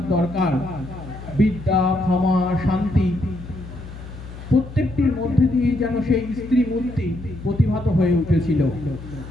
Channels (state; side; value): noise; left; hum, 13 dB below the sound